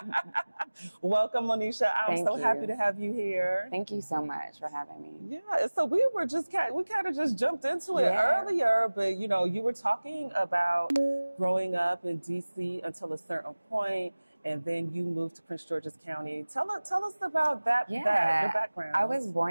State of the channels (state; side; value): inverted; both; correlation -1.00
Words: Welcome, Moniesha. I'm so happy to have you here. Thank you so much for having me. Yeah, so we kind of just jumped into it earlier, but you were talking about growing up in DC until a certain point, and then you moved to Prince George's County. Tell us about that, your background. I was